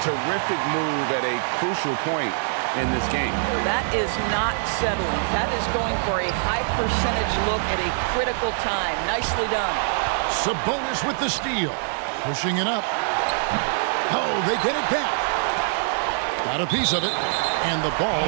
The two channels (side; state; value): left; silent; digital silence